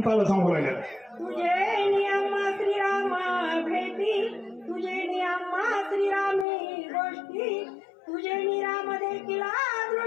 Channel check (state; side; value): drops out; right; at 6.5 s